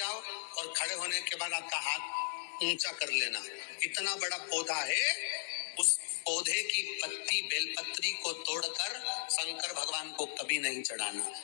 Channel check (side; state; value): right; silent; digital silence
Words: और खड़े होने के बाद आपका हाथ ऊंचा कर लेना, इतना बड़ा पौधा है, उस पौधे की पत्ती बेलपत्री को तोड़कर शंकर भगवान को कभी नहीं चढ़ाना।